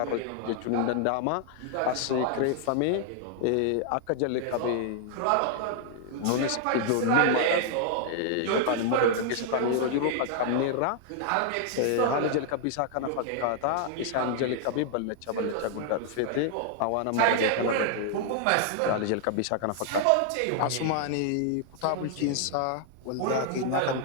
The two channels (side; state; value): both; different; correlation -0.01